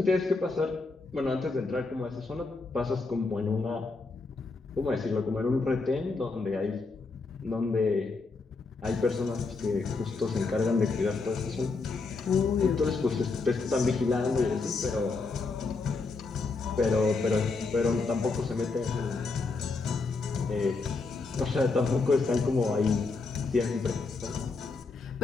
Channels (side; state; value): right; quieter; 4.0 dB